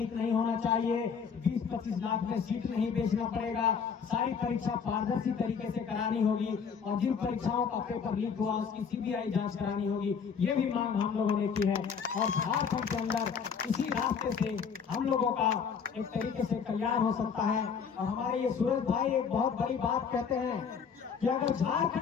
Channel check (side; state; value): right; quieter; 6.5 dB